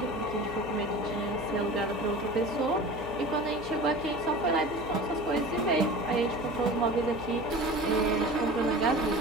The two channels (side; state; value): right; noise; hum, 14 dB below the sound